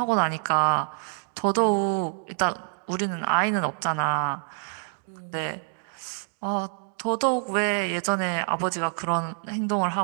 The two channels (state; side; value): silent; left; 61 dB below the other